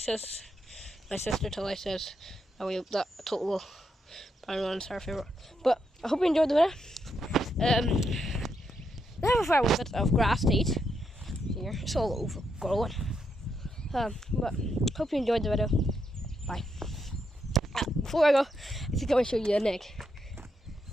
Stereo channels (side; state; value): both; normal; correlation 0.80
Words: my sister Tilly says And we hope that total brown one's our favourite. But I hope you enjoyed the video. They have a fair bit of grass to eat here. It's all overgrown. But hope you enjoyed the video. Bye. Before I go, I think I want to show you an egg.